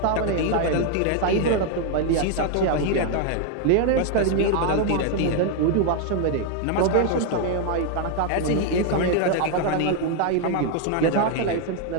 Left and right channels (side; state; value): both; different; correlation 0.00